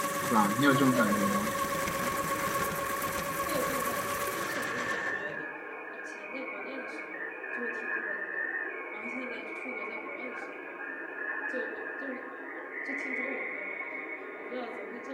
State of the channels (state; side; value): identical; both; correlation 1.00